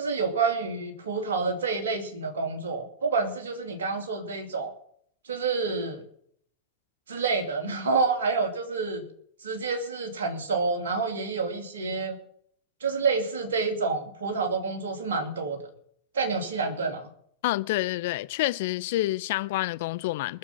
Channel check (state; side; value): inverted; both; correlation -0.34